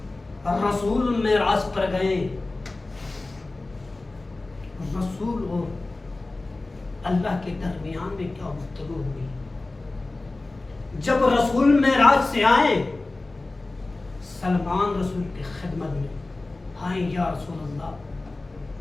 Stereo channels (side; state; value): right; quieter; 3.1 dB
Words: رسول معراج پر گئے, رسول اور اللہ کے درمیان میں کیا گفتگو ہوئی. جب رسول معراج سے آئے, سلمان رسول کی خدمت میں آئے, یا رسول اللہ